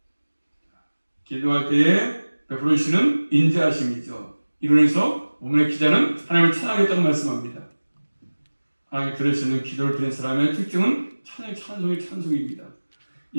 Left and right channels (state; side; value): inverted; both; correlation -1.00